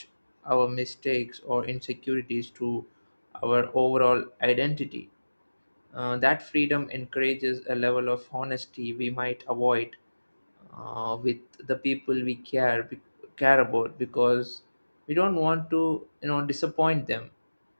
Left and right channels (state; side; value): inverted; both; correlation -1.00